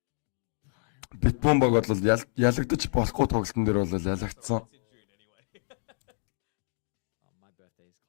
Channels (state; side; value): silent; right; digital silence